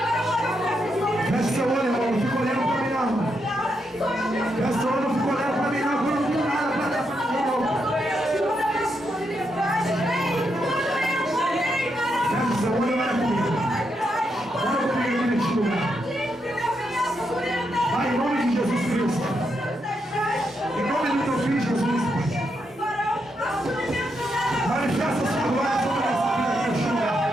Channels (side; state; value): both; normal; correlation 0.81